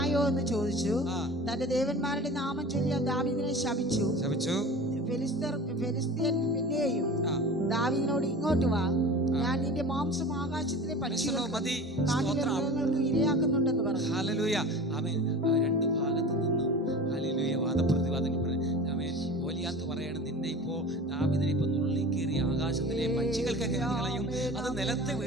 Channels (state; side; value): normal; both; correlation 0.36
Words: എന്ന് ചോദിച്ചു. തന്റെ ദേവന്മാരുടെ നാമം ചൊല്ലി ദാവീദിനെ ശപിച്ചു. ഫെലിസ്ത്യൻ പിന്നെയും ദാവീദിനോട്, ഇങ്ങോട്ട് വാ, ഞാൻ നിന്റെ മാംസം ആകാശത്തിലെ പക്ഷികൾക്ക് ഇരയാക്കുന്നുണ്ടെന്ന് പറഞ്ഞു. ഹല്ലേലൂയ. ആമേൻ. 2 ഭാഗത്തു നിന്നും ഹല്ലേലൂയ വാദപ്രതിവാദം. ആമേൻ. ഗോലിയാത്ത് പറയണം, നിന്നെ ഇപ്പോ ദാവീദിനെ ഇപ്പൊ നുള്ളിക്കേറി ആകാശത്തിലെ പക്ഷികൾക്ക് കളയും. അത് നിലത്ത്